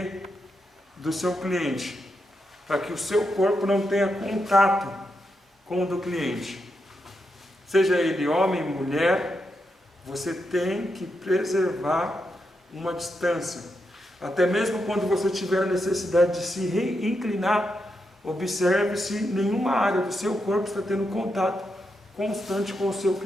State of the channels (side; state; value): both; normal; correlation 0.84